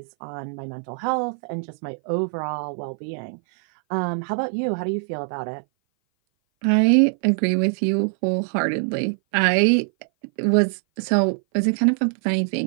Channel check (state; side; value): silent; left; 58 dB below the other